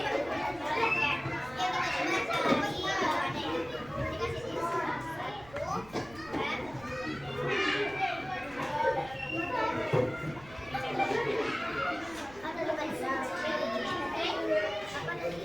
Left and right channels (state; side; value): noise; right; rumble, 20 dB below the sound